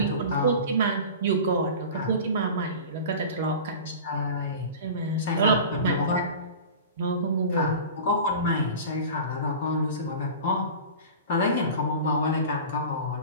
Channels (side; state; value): both; inverted; correlation -0.35